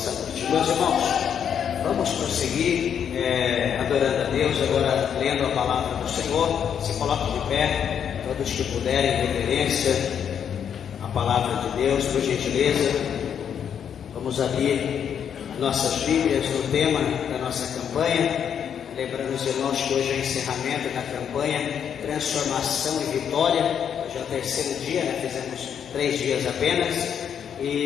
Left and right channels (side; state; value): right; quieter; 8.3 dB